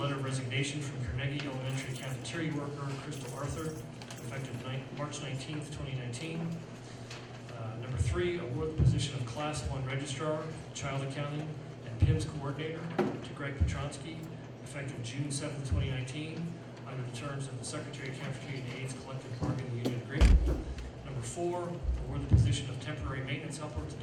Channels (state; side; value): identical; both; correlation 1.00